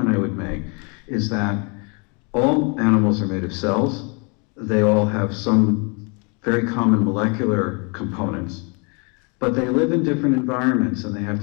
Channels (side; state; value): right; quieter; 33.7 dB